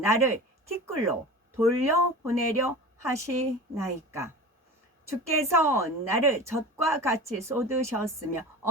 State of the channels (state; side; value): normal; both; correlation 0.34